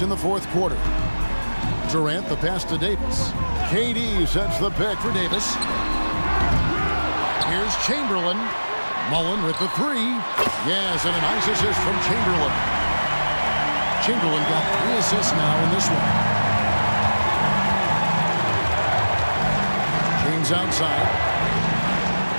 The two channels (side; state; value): both; inverted; correlation -1.00